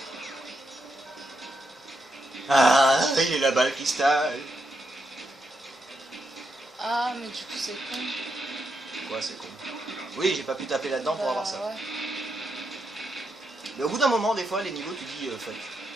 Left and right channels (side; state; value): both; normal; correlation 0.82